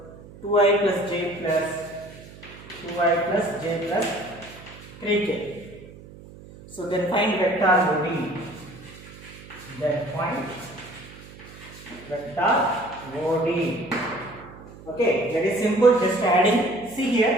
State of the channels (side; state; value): right; noise; hum, 18 dB below the sound